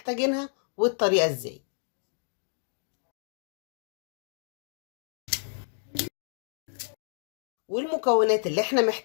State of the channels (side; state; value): right; silent; digital silence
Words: والطريقه ازاي. والمكونات اللي احنا